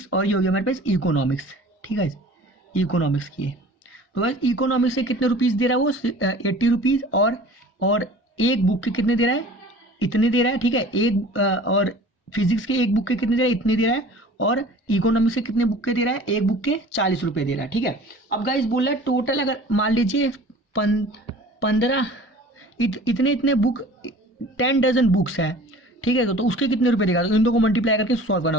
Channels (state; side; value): normal; both; correlation 0.45